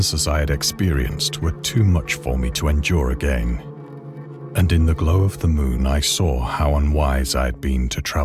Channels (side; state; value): both; identical; correlation 1.00